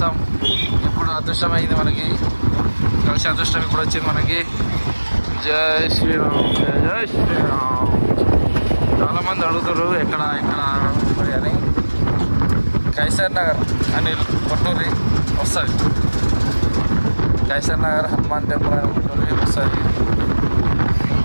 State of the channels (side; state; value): both; inverted; correlation -1.00